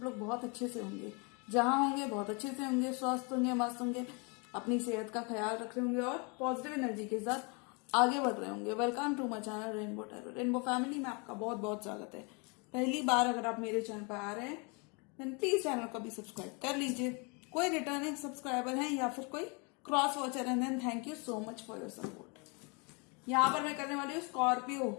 लोग बहुत अच्छे से होंगे, जहाँ होंगे बहुत अच्छे से होंगे, स्वस्थ होंगे, मस्त होंगे, अपनी सेहत का ख्याल रख रहे होंगे और पॉजिटिव एनर्जी के साथ आगे बढ़ रहे होंगे। Welcome to my channel rainbow tarot. Rainbow family में आपका बहुत बहुत स्वागत है। पहली बार अगर आप मेरे चैनल पर आ रहे हैं देन प्लीज चैनल को भी सब्सक्राइब कर लीजिए। कोई रिटर्निंग सब्सक्राइबर हैं या फिर कोई क्रॉस वॉचर है then thank you so much for your support. यहाँ पर मैं करने वाली हूँ स्कॉर्पियो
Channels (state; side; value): quieter; right; 32.3 dB